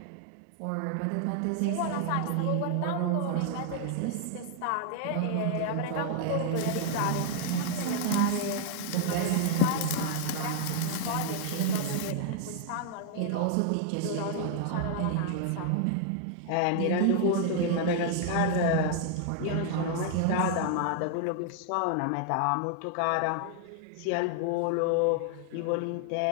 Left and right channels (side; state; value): both; different; correlation 0.00